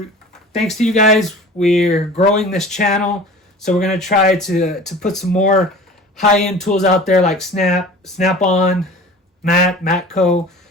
to you guys, we're growing this channel. So we're going to try to put some more high-end tools out there like Snap-on, MATCO,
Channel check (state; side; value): normal; both; correlation 0.41